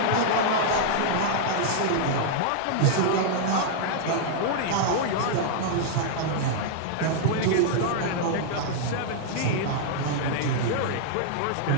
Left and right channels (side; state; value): both; different; correlation -0.01